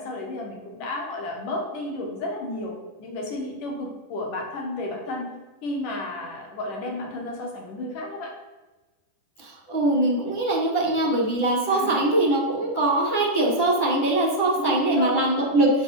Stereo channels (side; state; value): right; late; 9.9 ms